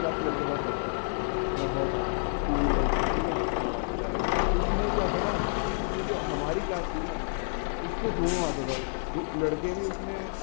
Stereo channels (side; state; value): right; silent; 59 dB below the other